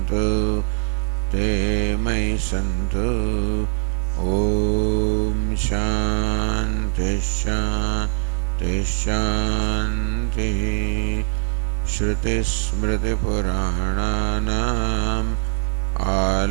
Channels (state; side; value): silent; left; digital silence